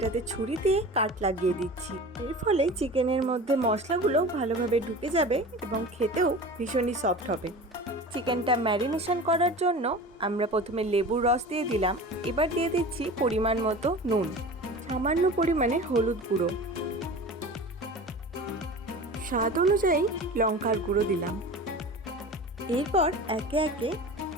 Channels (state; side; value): normal; both; correlation 0.35